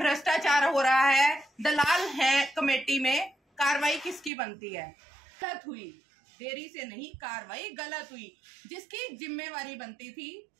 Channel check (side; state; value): left; drops out; at 4.3 s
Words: हो रहा है, दलाल है कमेटी में। कार्रवाई किसकी बनती है? गलत हुई, देरी से नहीं, कार्रवाई गलत हुई। जिसकी जिम्मेवारी बनती थी